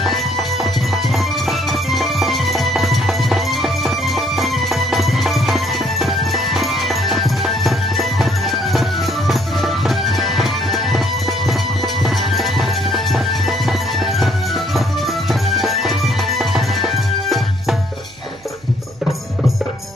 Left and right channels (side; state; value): right; noise; hum, 27 dB below the sound